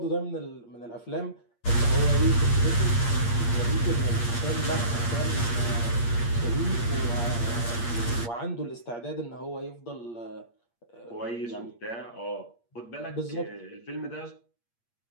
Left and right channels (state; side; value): late; right; 8.6 ms